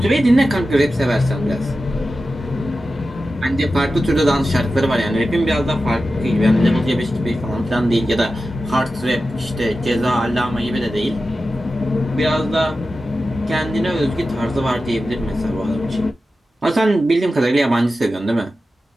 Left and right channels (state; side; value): normal; both; correlation 0.93